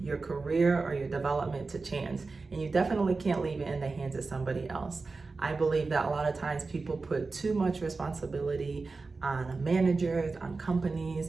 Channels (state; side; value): quieter; left; 4.0 dB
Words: your career or your development to chance, and you definitely can't leave it in the hands of somebody else. I believe that a lot of times people put too much responsibility on managers, on